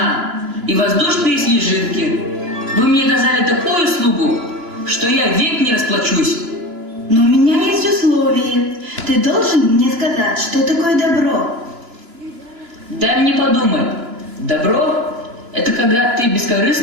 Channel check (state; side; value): late; left; 3.0 ms